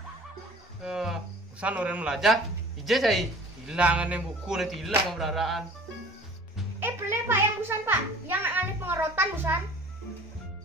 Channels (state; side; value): normal; both; correlation 0.46